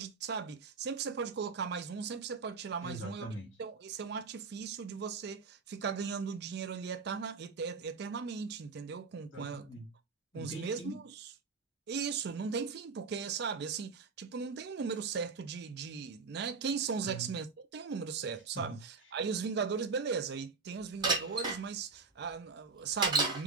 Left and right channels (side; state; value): left; quieter; 4.8 dB